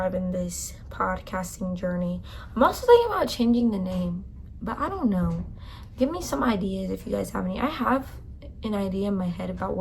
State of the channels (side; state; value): both; identical; correlation 1.00